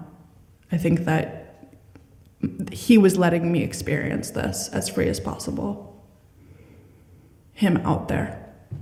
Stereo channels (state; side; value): identical; both; correlation 1.00